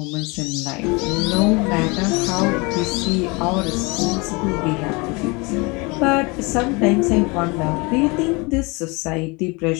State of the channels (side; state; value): right; quieter; 27.4 dB